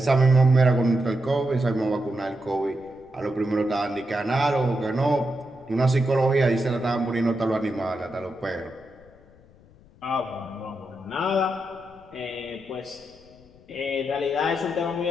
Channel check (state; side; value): noise; left; rumble, 26 dB below the sound